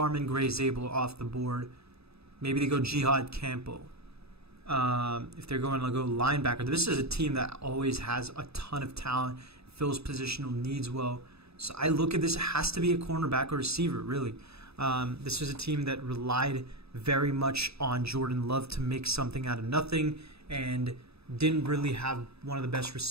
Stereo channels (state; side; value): late; left; 0.79 ms